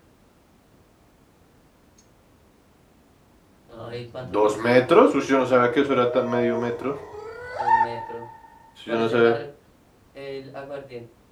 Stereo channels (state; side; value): identical; both; correlation 1.00